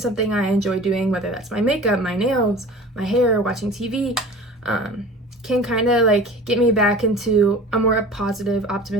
I enjoy doing, whether that's my makeup, my nails, my hair, watching TV, can kind of like get me back into a more positive,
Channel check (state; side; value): normal; both; correlation 0.40